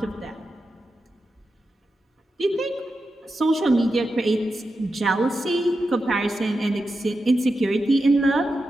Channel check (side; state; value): both; normal; correlation 0.89